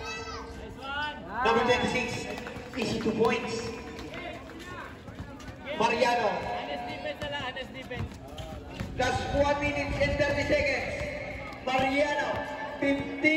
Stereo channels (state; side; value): identical; both; correlation 1.00